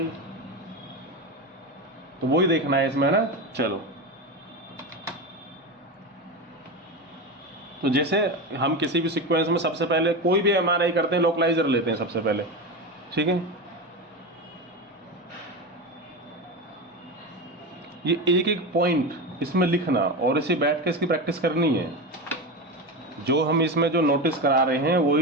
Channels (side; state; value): both; normal; correlation 0.20